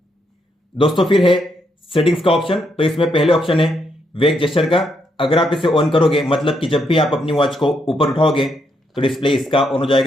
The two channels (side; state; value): both; normal; correlation 0.78